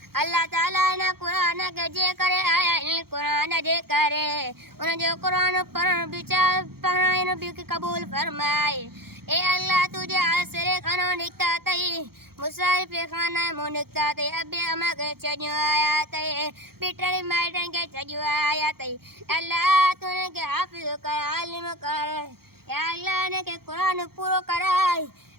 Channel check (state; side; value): late; left; 0.94 ms